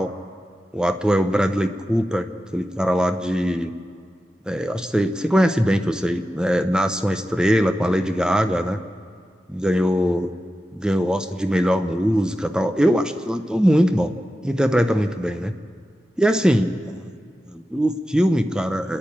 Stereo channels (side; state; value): both; normal; correlation 0.92